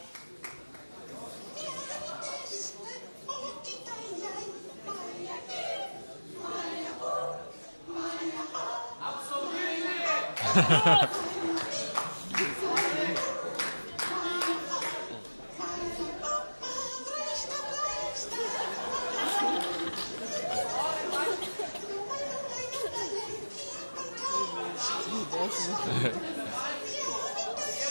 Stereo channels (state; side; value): inverted; both; correlation -1.00